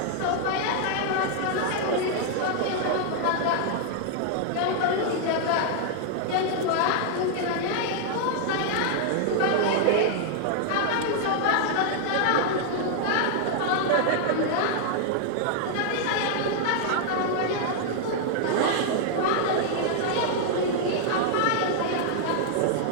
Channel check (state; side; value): different; both; correlation 0.00